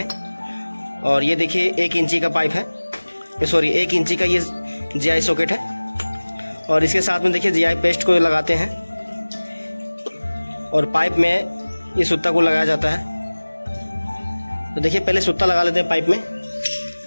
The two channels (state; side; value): inverted; both; correlation -1.00